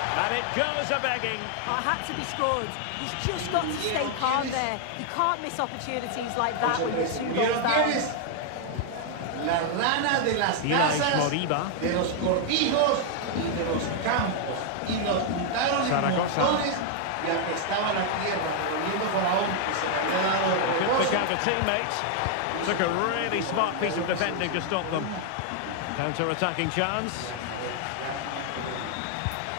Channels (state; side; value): different; both; correlation 0.00